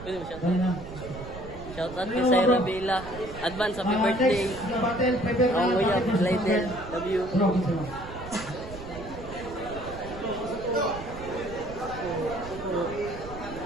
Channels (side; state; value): right; noise; rumble, 12 dB below the sound